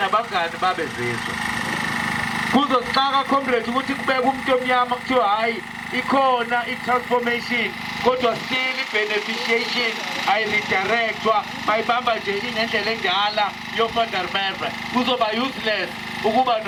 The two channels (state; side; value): identical; both; correlation 1.00